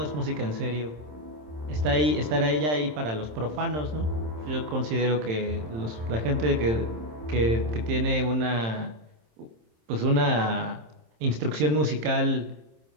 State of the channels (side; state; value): left; late; 27 ms